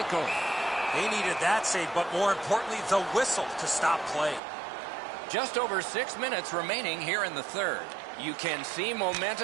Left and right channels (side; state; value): left; drops out; at 4.4 s